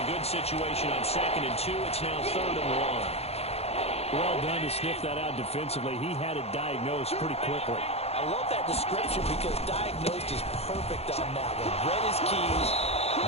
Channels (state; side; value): late; right; 0.30 ms